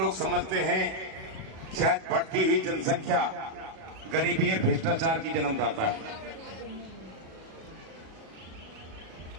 समझते हैं शायद बढ़ती हुई जनसंख्या गरीबी और भ्रष्टाचार की जन्मदाता है।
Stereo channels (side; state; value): left; late; 37 ms